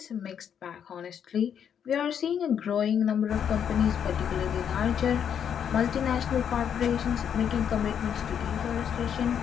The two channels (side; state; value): right; quieter; 8.3 dB